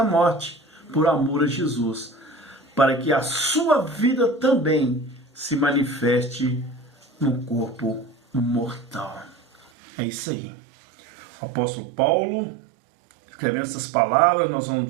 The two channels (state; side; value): drops out; left; at 9.7 s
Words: morte, por amor a Jesus, para que a sua vida também se manifeste no corpo mortal. É isso aí. O apóstolo Paulo, escrevendo essas palavras, nós vamos